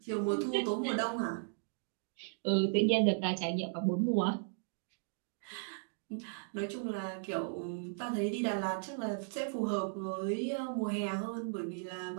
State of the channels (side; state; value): left; silent; digital silence